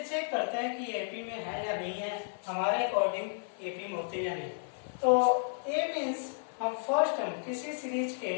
चेक करते हैं कि एपी में है या नहीं है, हमारे अकॉर्डिंग एपी में होते हैं या नहीं। तो ए मीन्स हम फर्स्ट टर्म किसी सीरीज के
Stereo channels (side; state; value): right; silent; 56 dB below the other